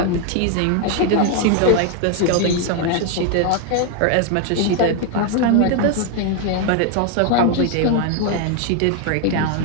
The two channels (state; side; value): different; both; correlation 0.01